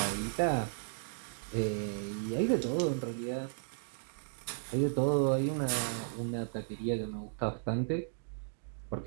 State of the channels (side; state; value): left; silent; digital silence